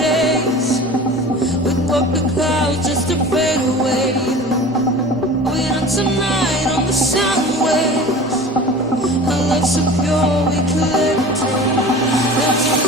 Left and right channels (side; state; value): both; normal; correlation 0.38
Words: We'd walk the clouds just to fade away.